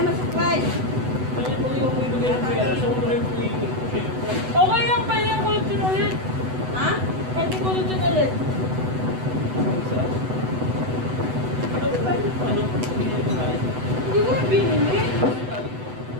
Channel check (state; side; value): late; left; 8.0 ms